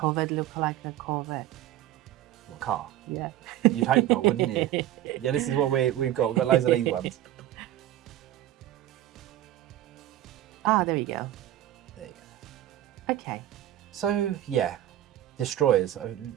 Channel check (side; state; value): left; quieter; 13.2 dB